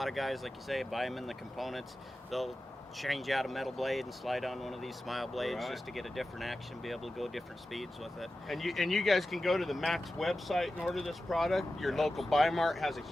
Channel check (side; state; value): both; normal; correlation 0.94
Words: of guys, like you say, buy them in the components. They'll change out a metal blade and slide on one of these smile blades Right. just to get a different action, be able to go different speeds with it. And you guys can go to the Max website and order this product. Your local Buy Mart has a